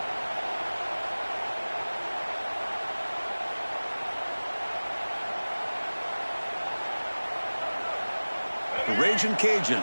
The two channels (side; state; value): both; inverted; correlation -1.00